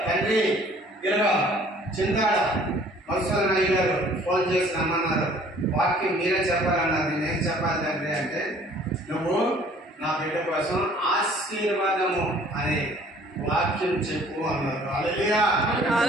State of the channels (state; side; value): normal; both; correlation 0.54